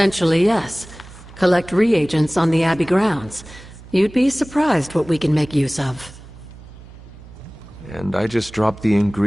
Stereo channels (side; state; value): right; noise; hum, 19 dB below the sound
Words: yes. Collect reagents on the Abbey grounds. You'd be surprised what we can make use of. And I just drop the